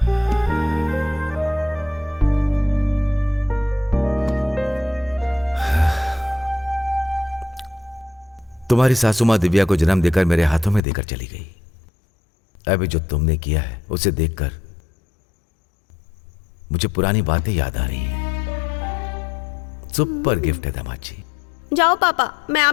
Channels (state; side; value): drops out; right; at 10.8 s